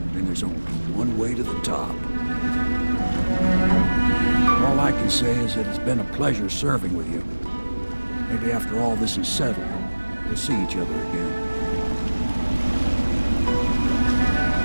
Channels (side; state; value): both; inverted; correlation -1.00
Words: and there's only one way to the top. All I can say is that it's been a pleasure serving with you. Maybe after all this is settled, we'll see each other again.